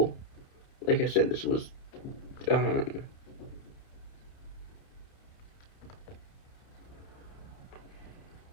Like I said, this was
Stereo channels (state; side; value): late; right; 30 ms